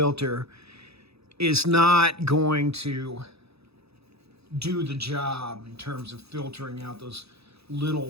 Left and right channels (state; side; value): late; left; 0.78 ms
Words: is not going to do the job in terms of filtering out those